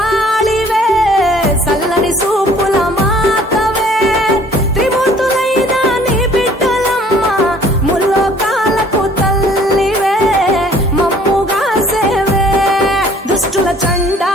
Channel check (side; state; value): both; normal; correlation 0.55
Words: సల్లని సూపుల మాతవే త్రిమూర్తులైన నీ బిడ్డలమ్మ ముల్లోకాలకు తల్లివే మమ్ముగా సేవే దుష్టుల